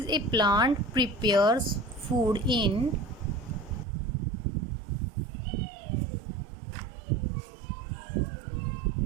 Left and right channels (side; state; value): left; drops out; at 3.9 s